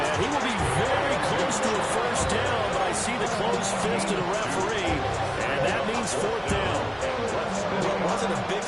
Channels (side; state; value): both; identical; correlation 1.00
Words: he will be very close to a first down, but I see the closed fist of the referee, and that means 4th down. Well, it wasn't a big